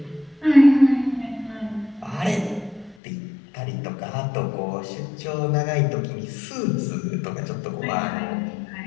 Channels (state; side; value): drops out; right; at 3.0 s